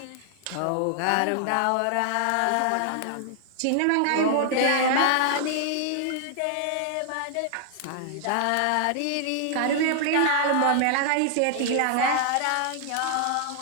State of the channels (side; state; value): both; different; correlation 0.00